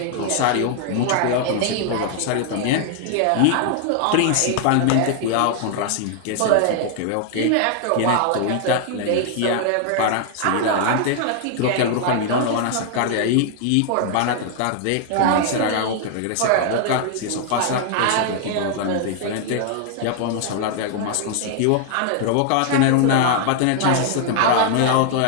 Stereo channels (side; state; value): both; different; correlation 0.00